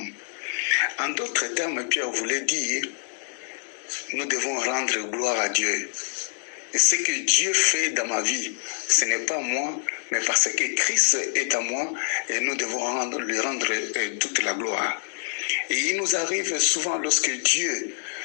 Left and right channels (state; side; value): silent; right; digital silence